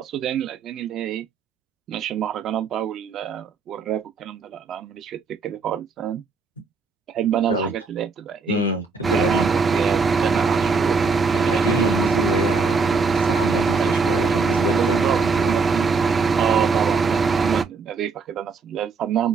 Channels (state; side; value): quieter; left; 4.6 dB